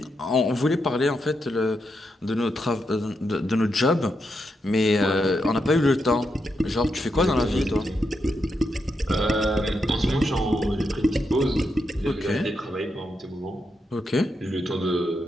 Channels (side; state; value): both; normal; correlation 0.83